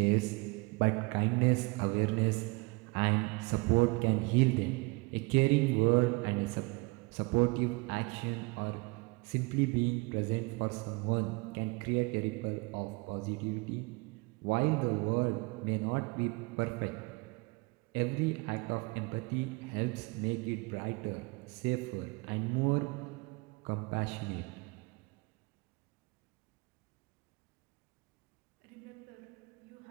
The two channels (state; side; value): quieter; left; 27.4 dB